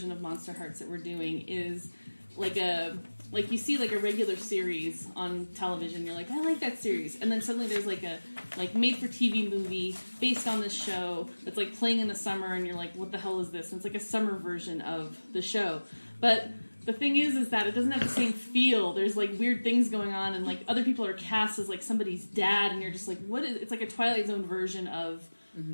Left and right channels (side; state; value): both; inverted; correlation -1.00